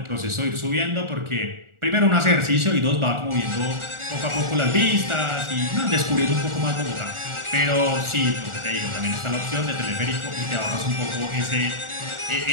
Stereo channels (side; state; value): left; late; 1.4 ms